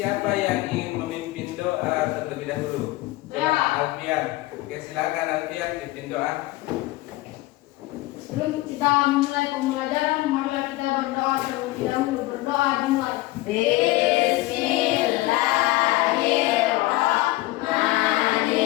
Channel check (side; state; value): right; quieter; 18.9 dB